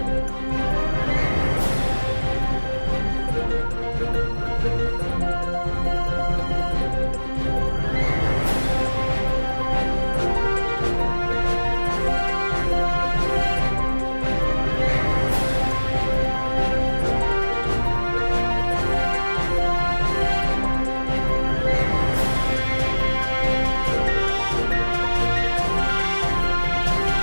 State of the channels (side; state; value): both; inverted; correlation -1.00